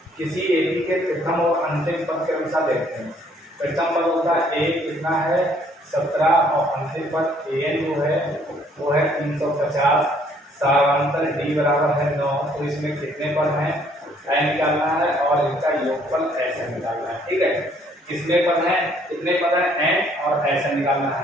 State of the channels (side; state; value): both; normal; correlation 0.63